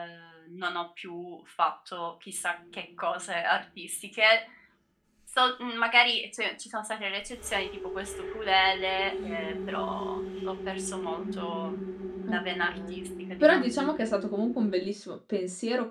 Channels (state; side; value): identical; both; correlation 1.00